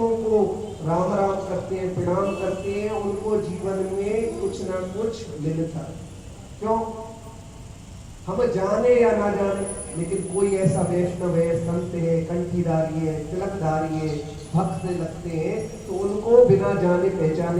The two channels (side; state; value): both; identical; correlation 1.00